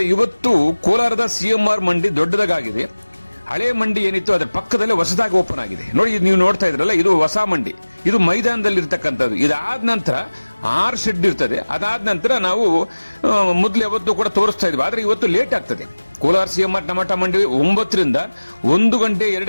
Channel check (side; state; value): both; inverted; correlation -1.00